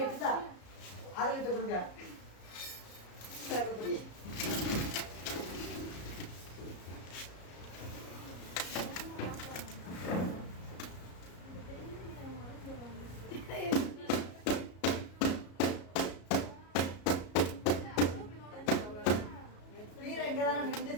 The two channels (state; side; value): late; right; 34 ms